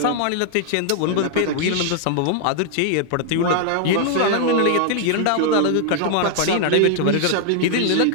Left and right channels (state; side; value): different; both; correlation 0.00